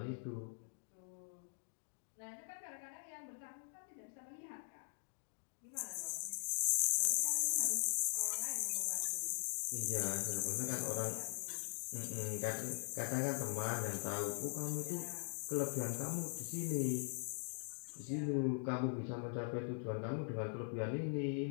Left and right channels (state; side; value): silent; right; digital silence